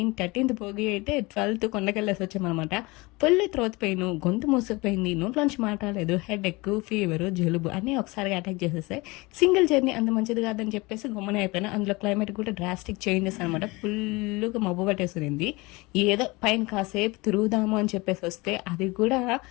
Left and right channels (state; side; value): quieter; right; 23.9 dB